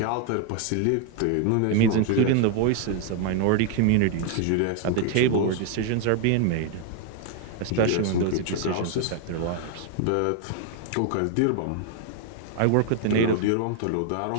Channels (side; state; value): both; different; correlation 0.00